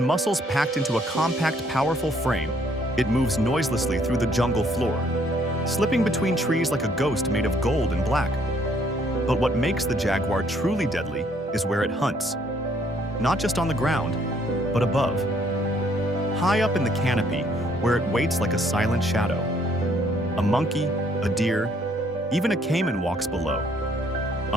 muscles packed into a compact, powerful frame, it moves noiselessly through the jungle floor, slipping between trees like a ghost made of gold and black. But what makes the jaguar truly deadly is where it hunts. Not just on the ground, but above. High up in the canopy, where it waits like a silent shadow. A monkey, a deer, even a caiman walks below,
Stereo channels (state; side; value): normal; both; correlation 0.65